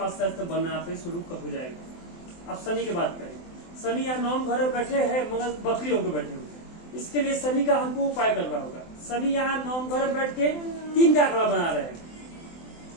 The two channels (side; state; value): right; late; 24 ms